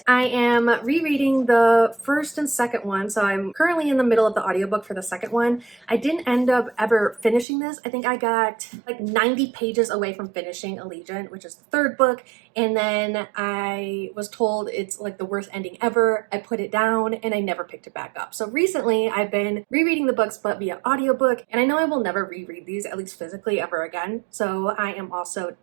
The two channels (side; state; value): left; drops out; at 7.5 s